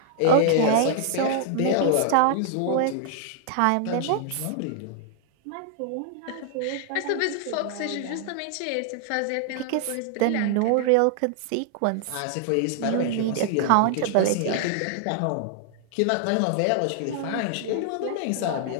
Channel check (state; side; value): different; both; correlation -0.01